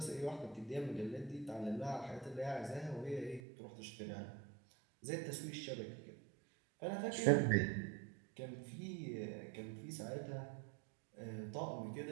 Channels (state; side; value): drops out; left; at 3.4 s